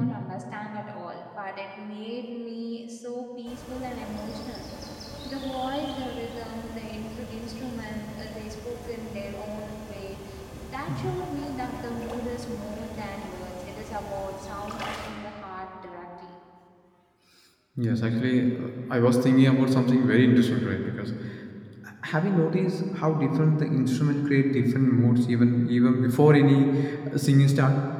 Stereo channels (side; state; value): both; identical; correlation 1.00